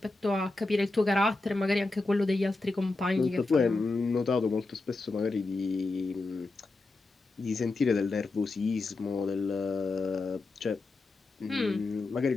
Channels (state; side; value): quieter; right; 3.3 dB